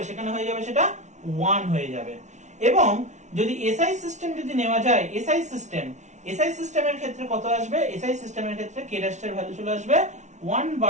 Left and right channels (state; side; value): late; left; 0.34 ms